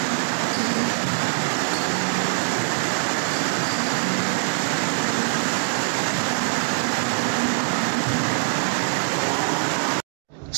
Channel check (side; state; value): left; silent; 60 dB below the other